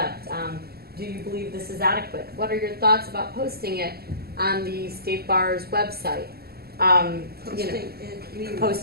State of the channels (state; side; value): late; left; 0.45 ms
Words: Do you believe this is adequate? What are your thoughts about posting it on the State Bar's website?